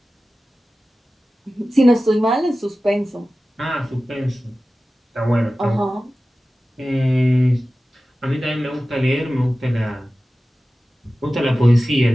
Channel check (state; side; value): normal; both; correlation 0.95